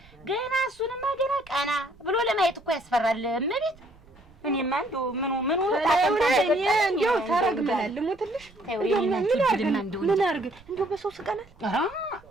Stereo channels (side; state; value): right; noise; rumble, 26 dB below the sound